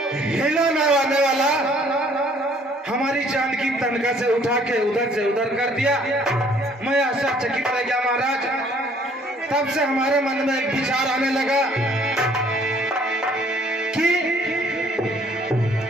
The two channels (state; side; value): normal; both; correlation 0.60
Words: हिलाने वाला हमारी जानकी तनखा से उठा के उधर से उधर कर दिया। मैं आश्चर्यचकित रह गया महाराज। तब से हमारे मन में एक विचार आने लगा कि